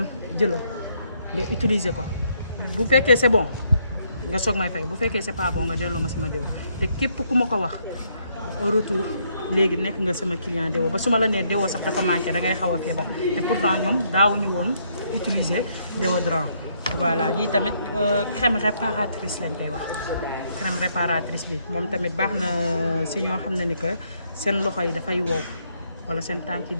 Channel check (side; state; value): both; inverted; correlation -0.72